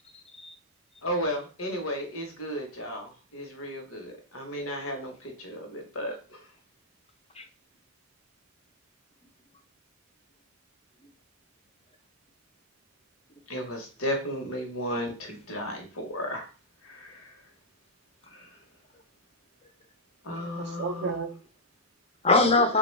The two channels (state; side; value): normal; both; correlation -0.08